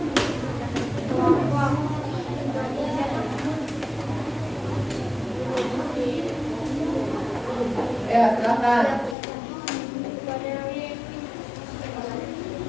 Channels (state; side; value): drops out; right; at 9.2 s